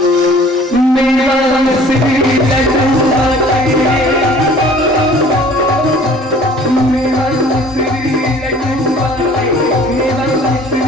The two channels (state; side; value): normal; both; correlation 0.50